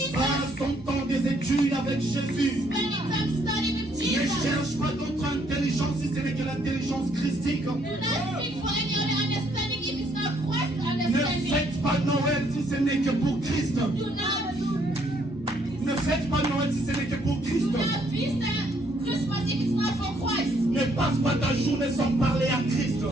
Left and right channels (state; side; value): normal; both; correlation 0.68